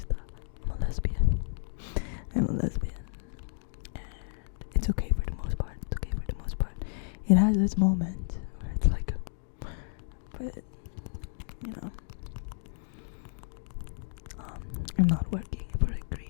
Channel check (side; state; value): right; silent; digital silence